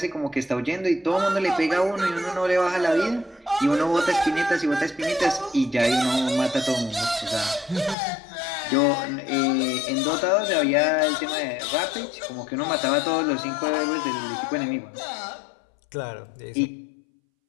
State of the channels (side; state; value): right; drops out; at 8.0 s